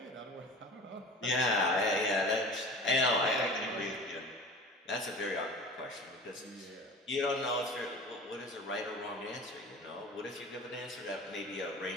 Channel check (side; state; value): both; normal; correlation 0.39